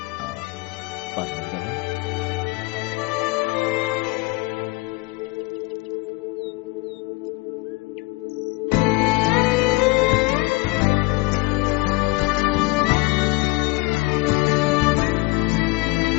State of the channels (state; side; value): quieter; right; 24.4 dB